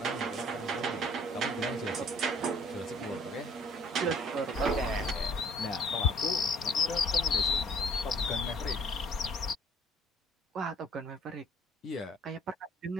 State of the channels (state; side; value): normal; both; correlation 0.56